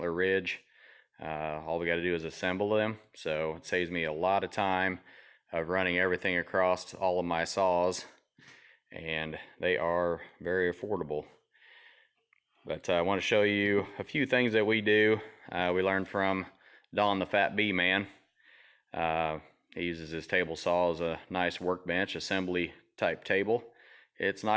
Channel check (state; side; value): identical; both; correlation 1.00